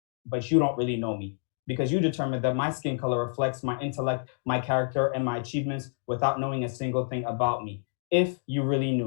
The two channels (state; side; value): silent; right; digital silence